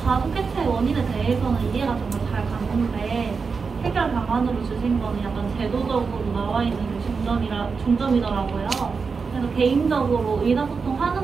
가족 해체 원인에 대해서는 이해가 정말 잘 가는데 해결 방안으로 주신 거는 약간 제도적으로 나와 있는 중점이더라고요. 그래서 개인적으로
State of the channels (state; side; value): quieter; left; 5.1 dB